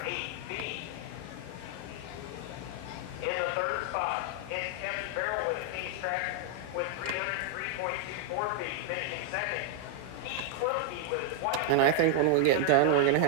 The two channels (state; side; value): different; both; correlation 0.00